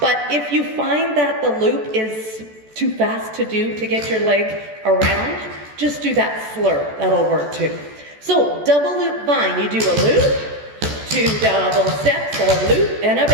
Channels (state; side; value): late; left; 14 ms